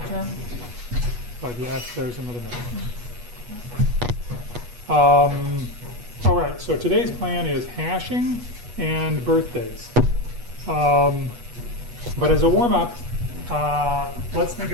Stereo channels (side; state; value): left; late; 8.3 ms